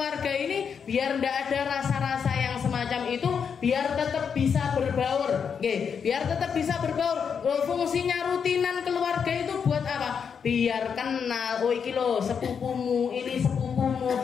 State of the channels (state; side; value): quieter; right; 6.8 dB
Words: ini biar tidak ada rasa-rasa yang semacam itu, biar tetap bisa berbaur. Biar tetap bisa berbaur. Fungsinya rutinan keluarga itu buat apa? Biar kenal, oh iki lo sepupumu, ini sepupumu,